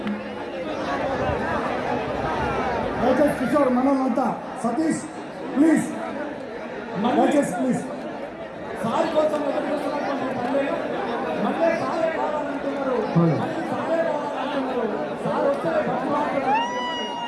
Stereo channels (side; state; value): both; identical; correlation 1.00